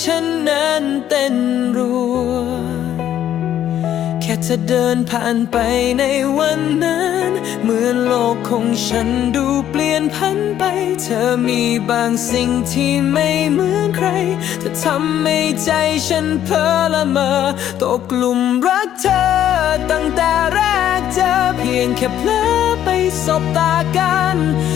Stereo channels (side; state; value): right; quieter; 11.0 dB